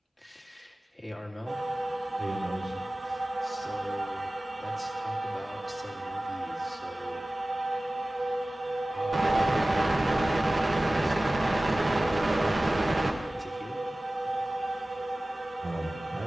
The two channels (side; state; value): both; normal; correlation 0.98